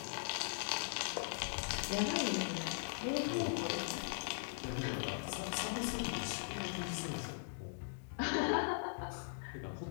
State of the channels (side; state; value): right; silent; digital silence